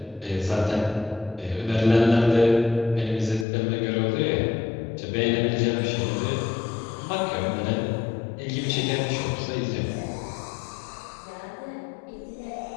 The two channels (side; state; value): right; drops out; at 3.5 s